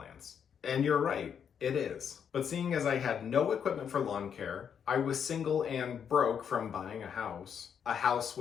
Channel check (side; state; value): right; quieter; 7.7 dB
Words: And you're right. It is. But seeing as I had no equipment for lawn care, I was single and broke from buying a house